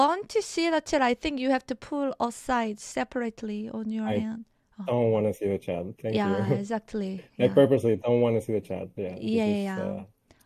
to see the chat, I think you have to pull aside separately on your I hand. Oh, don't want to see the chat. Thank yeah, you. exactly. I Yeah. purposely don't want to see the chat. Yeah, Yeah, this is yeah,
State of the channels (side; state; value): both; identical; correlation 1.00